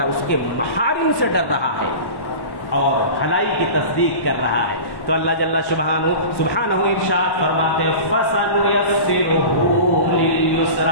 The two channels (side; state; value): right; late; 1.1 ms